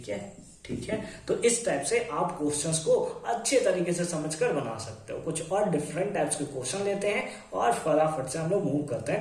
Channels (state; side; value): identical; both; correlation 1.00